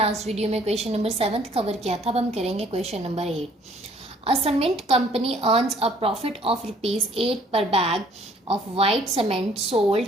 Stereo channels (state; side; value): normal; both; correlation 0.60